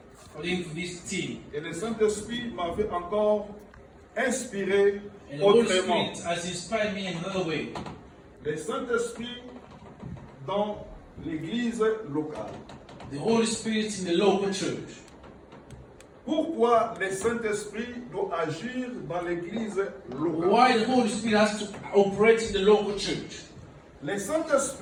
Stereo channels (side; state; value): both; identical; correlation 1.00